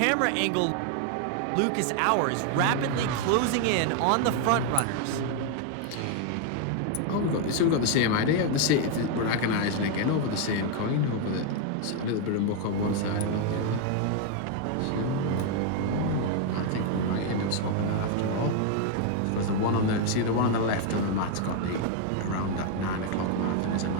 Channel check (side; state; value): both; different; correlation 0.00